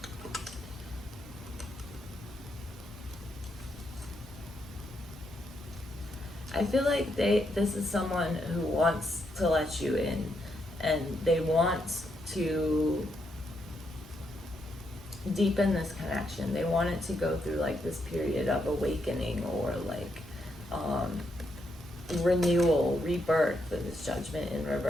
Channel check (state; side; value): normal; both; correlation 0.79